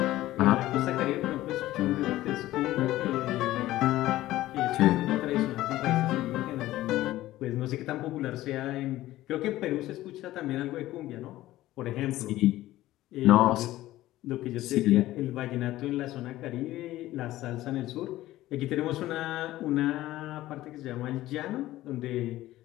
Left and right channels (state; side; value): quieter; right; 15.7 dB